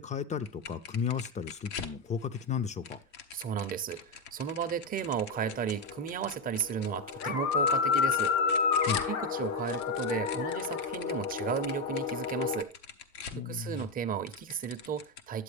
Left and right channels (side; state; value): both; normal; correlation 0.09